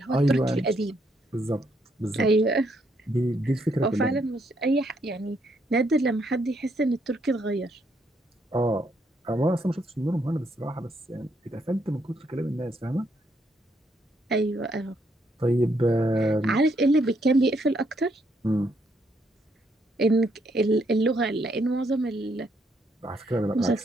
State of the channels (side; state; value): both; normal; correlation 0.74